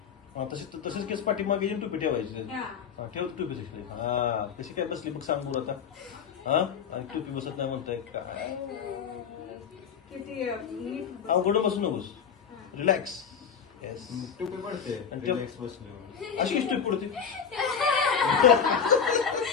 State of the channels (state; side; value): quieter; right; 7.1 dB